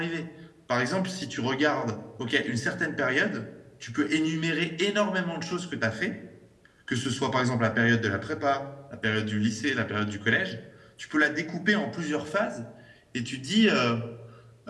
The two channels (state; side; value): identical; both; correlation 1.00